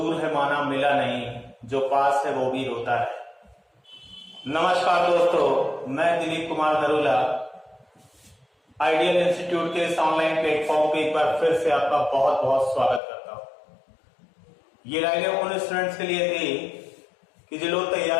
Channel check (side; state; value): right; drops out; at 13.0 s